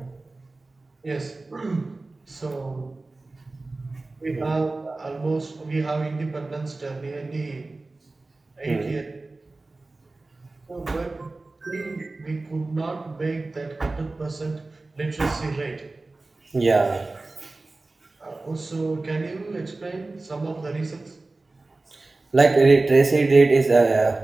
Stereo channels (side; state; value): left; quieter; 3.3 dB